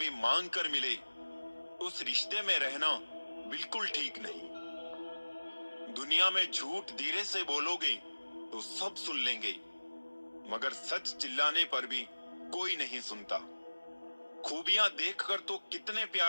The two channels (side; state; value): both; inverted; correlation -1.00